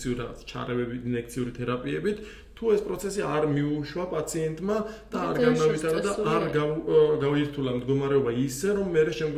რაღაც ჩარევებით, ინექციური თერაპიებით, თუ ეს პროცესი არ მიუშვა პაციენტმა და არ განავითარა და არ გაუირთულა მდგომარეობა ისე, რომ მე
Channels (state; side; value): identical; both; correlation 1.00